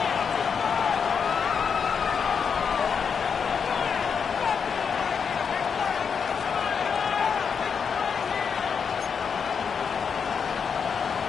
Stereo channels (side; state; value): right; quieter; 6.4 dB